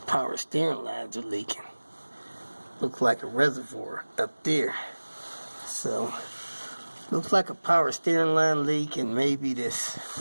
power steering lines are leaking. Looks like a reservoir up there. So, looks like a power steering line leak, and maybe this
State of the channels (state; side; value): inverted; both; correlation -1.00